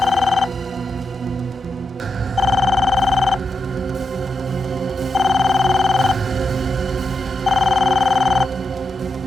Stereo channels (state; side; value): normal; both; correlation 0.85